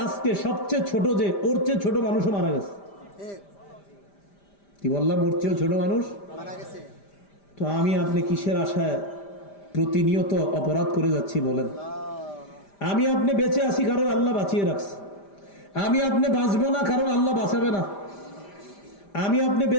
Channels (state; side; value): late; right; 5.0 ms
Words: আজকে সবচেয়ে ছোট যে, ওর চেয়ে ছোট মানুষও মারা গেছে। কি বললাম? ওর চেয়েও ছোট মানুষ মারা গেছে। তো আমি আপনি কিসের আশায় প্রতিনিয়ত অপরাধ করে যাচ্ছি বলেন? আমি আপনি বেঁচে আছি কারণ আল্লাহ বাঁচিয়ে রাখছে, আমি আপনি বাঁচবো না কারণ আল্লাহ বাঁচাবে না। আমি আপনি